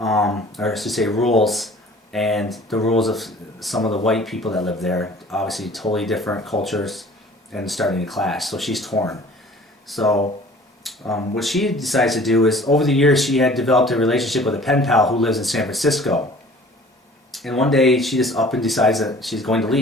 I should say rules, and the rules of some of the white people that live there. Obviously totally different cultures and starting to clash, so she's torn. So what she decides to do is, over the years she had developed a relationship with a pen pal who lives in San Francisco. And one day she just up and decides that she's going to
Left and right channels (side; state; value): both; normal; correlation 0.49